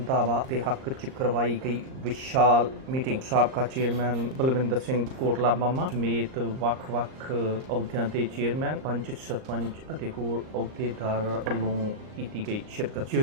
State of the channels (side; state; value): left; late; 38 ms